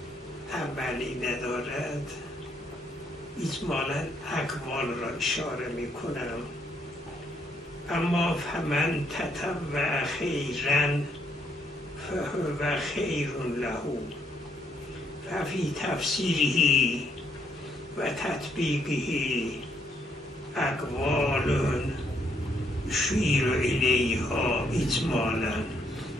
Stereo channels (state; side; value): normal; both; correlation 0.72